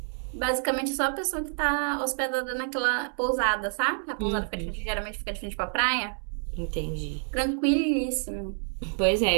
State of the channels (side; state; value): left; silent; 59 dB below the other